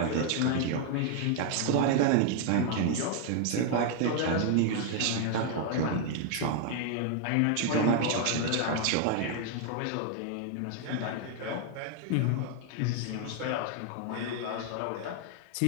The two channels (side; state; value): both; different; correlation 0.00